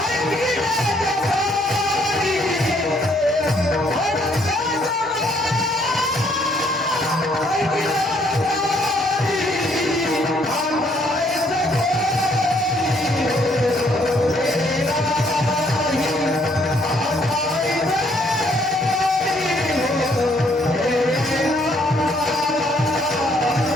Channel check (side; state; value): both; normal; correlation 0.67